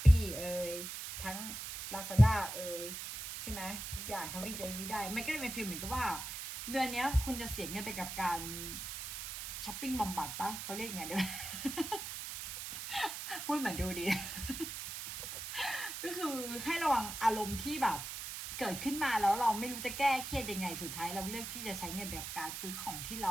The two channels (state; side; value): noise; right; hiss, 7 dB below the sound